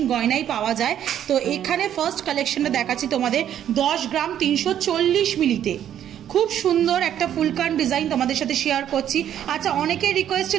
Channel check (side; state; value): left; quieter; 10.4 dB